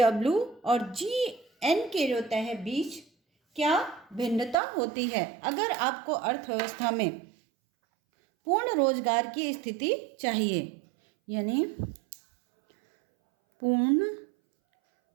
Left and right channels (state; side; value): drops out; left; at 4.5 s